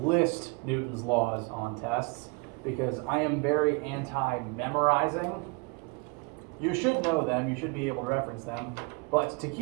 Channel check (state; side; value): quieter; left; 30.3 dB